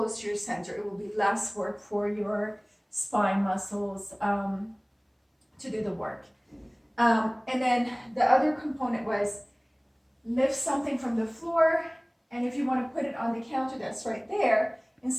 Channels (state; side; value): identical; both; correlation 1.00